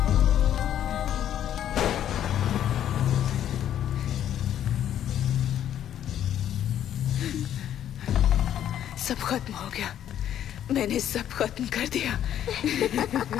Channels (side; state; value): right; quieter; 10.6 dB